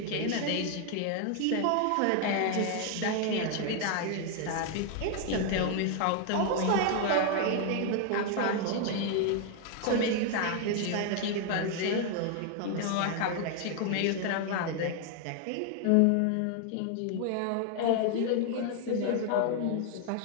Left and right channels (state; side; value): different; both; correlation 0.00